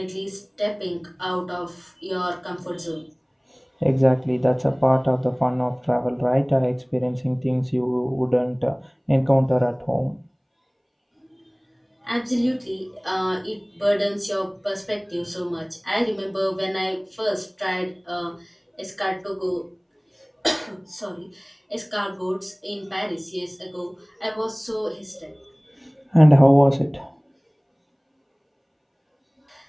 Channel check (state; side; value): identical; both; correlation 1.00